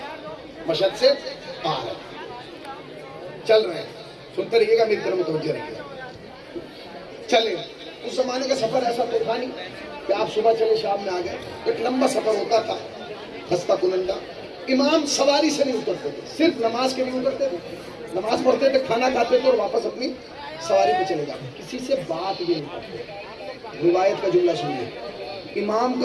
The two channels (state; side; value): identical; both; correlation 1.00